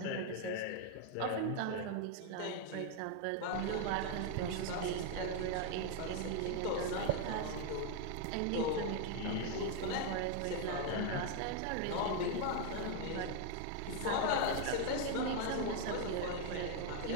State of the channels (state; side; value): different; both; correlation 0.00